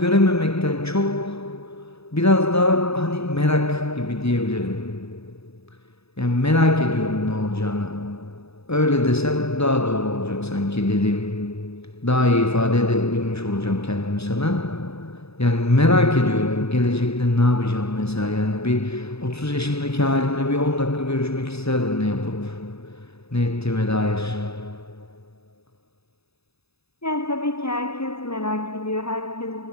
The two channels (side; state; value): right; late; 0.79 ms